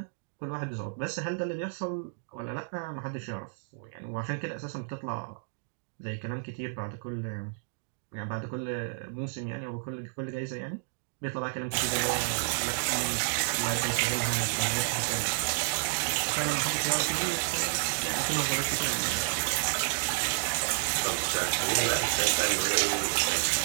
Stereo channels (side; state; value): left; silent; digital silence